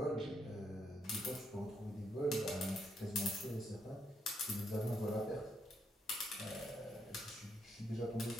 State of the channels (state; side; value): normal; both; correlation 0.76